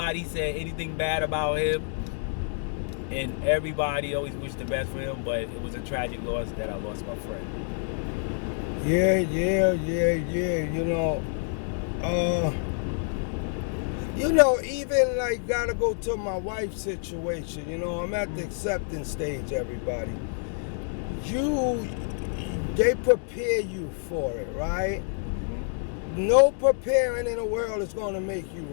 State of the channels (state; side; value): silent; right; 60 dB below the other